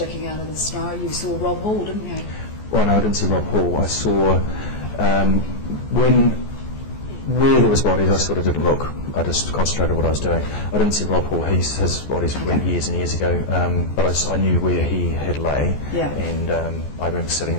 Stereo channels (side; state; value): right; late; 14 ms